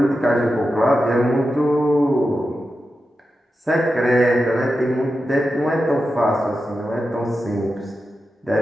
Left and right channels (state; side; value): normal; both; correlation 0.90